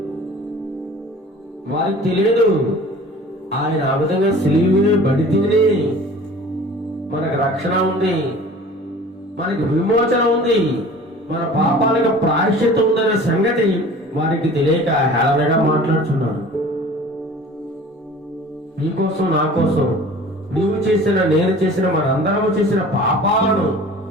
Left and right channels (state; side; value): normal; both; correlation 0.44